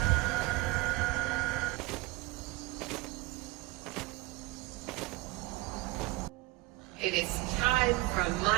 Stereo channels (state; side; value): quieter; left; 21.4 dB